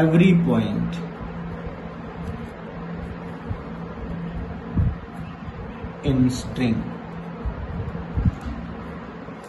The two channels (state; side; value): identical; both; correlation 1.00